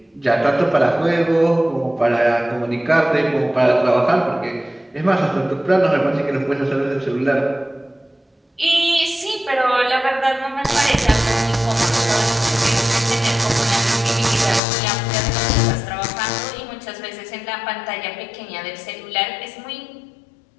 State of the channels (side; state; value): right; drops out; at 14.6 s